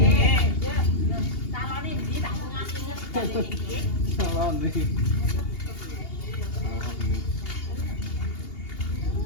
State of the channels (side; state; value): right; late; 2.8 ms